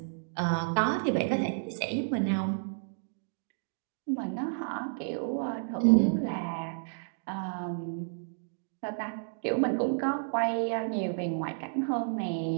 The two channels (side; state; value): left; silent; digital silence